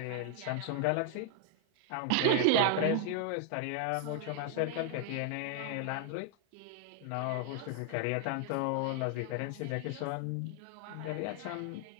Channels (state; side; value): different; both; correlation 0.00